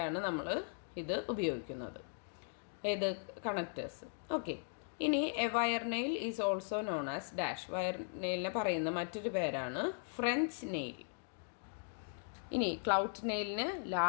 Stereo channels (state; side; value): silent; right; digital silence